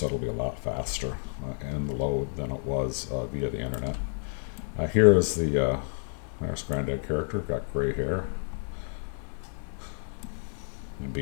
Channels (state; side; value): silent; right; digital silence